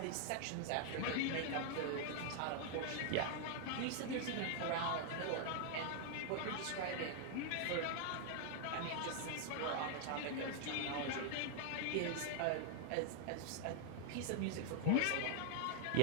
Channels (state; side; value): different; both; correlation 0.00